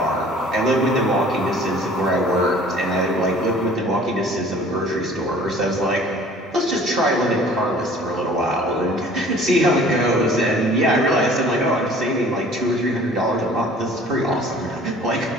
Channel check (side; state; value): both; normal; correlation 0.50